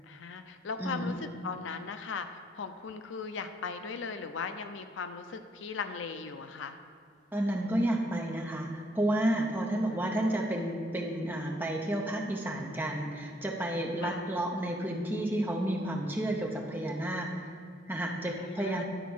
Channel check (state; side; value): normal; both; correlation 0.69